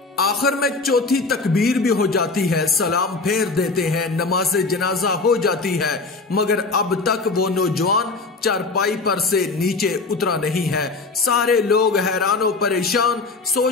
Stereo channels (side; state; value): right; quieter; 3.8 dB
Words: आखिर में चौथी तकबीर भी हो जाती है, सलाम फेर देते हैं, नमाज जनाजा हो जाती है। मगर अब तक वो नौजवान चारपाई पर से नीचे उतरा नहीं है। सारे लोग हैरान और परेशान,